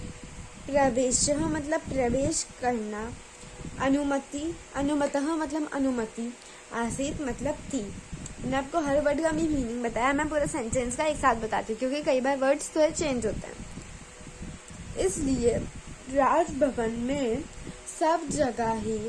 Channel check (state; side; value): identical; both; correlation 1.00